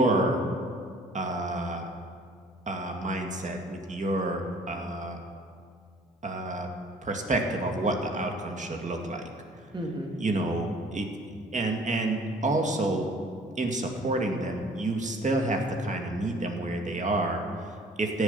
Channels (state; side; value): normal; both; correlation 0.53